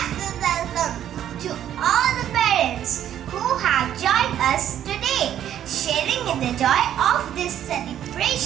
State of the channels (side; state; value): left; quieter; 10.7 dB